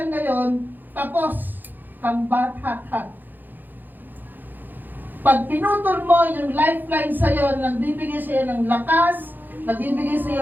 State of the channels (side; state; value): left; late; 0.088 ms